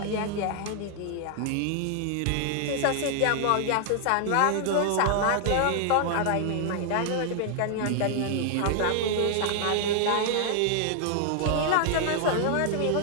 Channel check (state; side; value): different; both; correlation 0.00